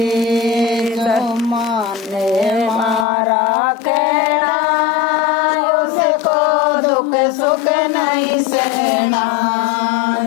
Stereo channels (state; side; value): drops out; right; at 3.1 s